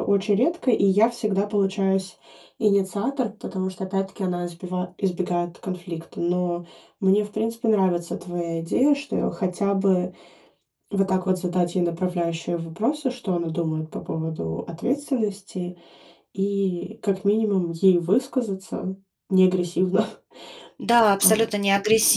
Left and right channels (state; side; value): identical; both; correlation 1.00